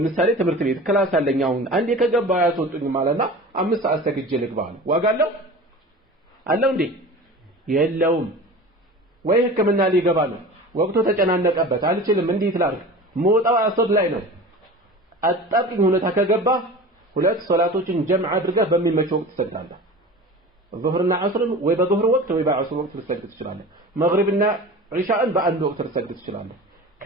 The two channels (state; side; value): normal; both; correlation 0.36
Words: ትምህርት ቤት ክላስ አለኝ አሁን አንዴ ከገባ ያስወጡኝ ማለትና 5 ሰዓት ተግጄ ልግባል ዋጋለው አለው እንዴ የለውም ወይ ህክምና ሊገባ ነው ወቅቱ ተጨናነቀበት አልችልም እንዴት ላድርግ ሞጣው አሶድ ላይ ነው አጣጥኝ ሁኔታ ከገባ ሁለት ሶላቶችን ጀምዕ አድርገህ በሚመች ወቅት ትሰግዳለህ ዙህርና ዐስርን ወይ በዙህር ወቅት ወይ በዐስር ወቅት ልትሰግድ ትችላለህ መግሪብና ዒሻእን በአንድ ወቅት ልትሰግድ ትችላለህ